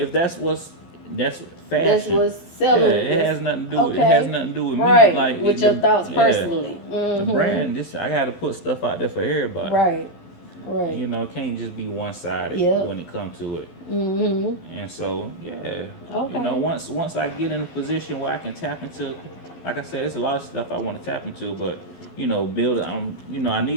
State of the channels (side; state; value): right; late; 12 ms